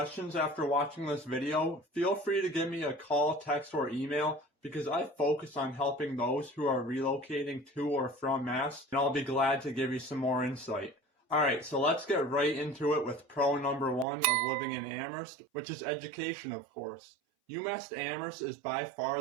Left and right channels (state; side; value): drops out; left; at 14.1 s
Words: after watching this video, feel free to give me a call, text, or email because I focus on helping those who are relocating to or from Mass, and I'll be glad to give you some more insight. Alright, so let's get right into it with pro number 1 of living in Amherst, which is education, of course. UMass Amherst is by